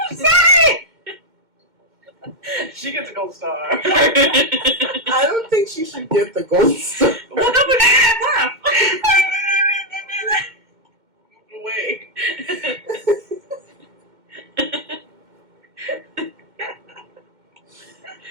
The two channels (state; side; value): late; left; 2.1 ms